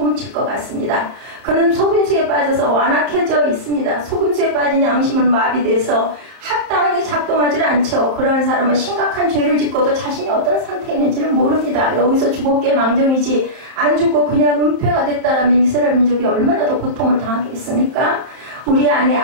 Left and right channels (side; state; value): left; late; 31 ms